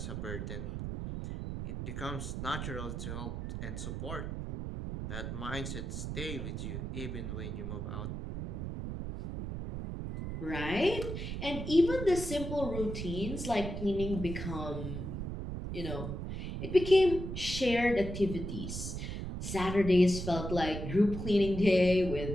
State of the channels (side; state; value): right; noise; rumble, 5 dB below the sound